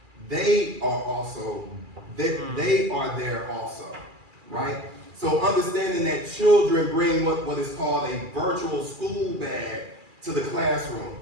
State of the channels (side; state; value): left; late; 2.4 ms